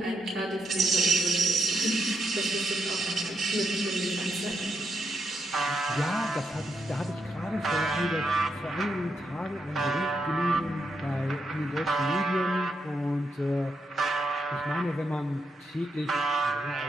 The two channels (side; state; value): both; normal; correlation 0.82